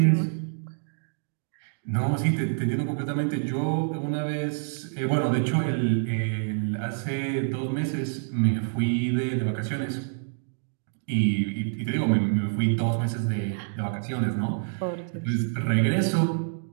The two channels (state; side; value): silent; left; digital silence